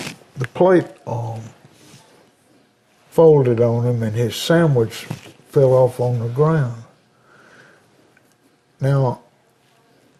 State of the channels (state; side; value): identical; both; correlation 1.00